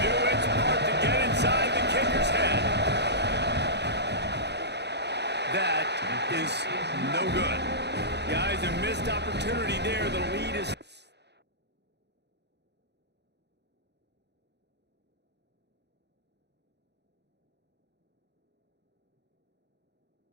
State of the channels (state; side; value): late; left; 0.49 ms